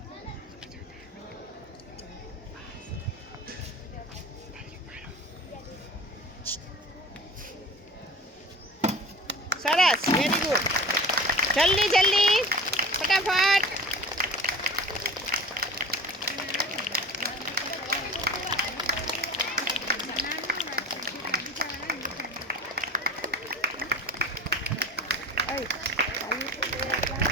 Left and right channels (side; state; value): both; normal; correlation 0.38